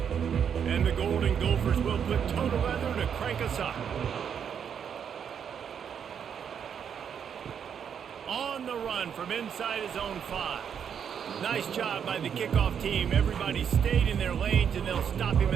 And the Golden Gophers will put toe to leather to crank us up. On the run from inside his own 5. Nice job by the kickoff team. Everybody stayed in their lanes, and they'll stop him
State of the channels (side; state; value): left; quieter; 7.8 dB